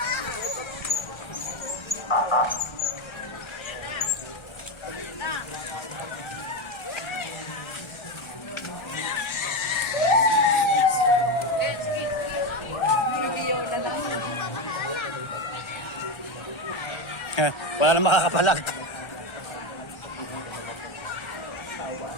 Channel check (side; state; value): right; late; 1.3 ms